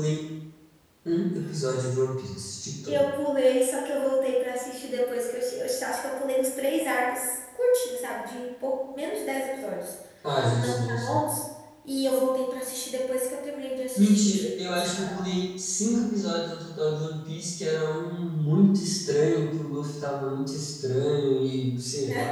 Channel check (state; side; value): identical; both; correlation 1.00